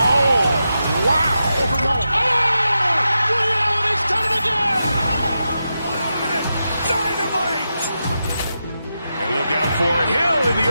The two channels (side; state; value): both; inverted; correlation -0.88